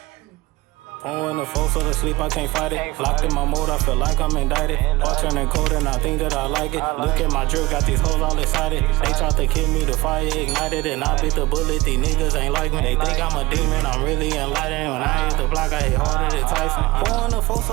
Pouring the four so to sleep, I can't fight it. Locked in my mode, I feel like I'm indicted. All turning cold and I think that I like it. Look at my drip, got these hoes all excited. They tried to kill me, the fire ignited, and I bit the bullet. These niggas ain't like me. They think I'm a demon, I'm really enlightened. When I hit the block, I hit harder than Tyson. Pouring the four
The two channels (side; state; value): left; quieter; 20.3 dB